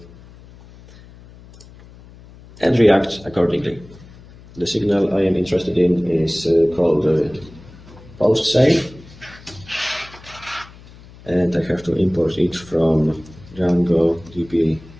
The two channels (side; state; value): left; noise; hum, 21 dB below the sound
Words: and react accordingly. The signal I am interested in is called post save, and I have to import it from Django DB